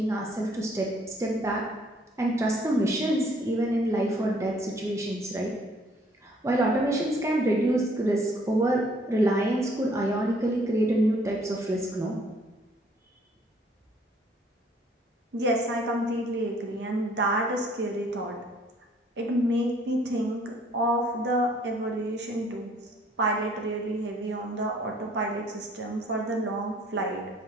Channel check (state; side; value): normal; both; correlation 0.61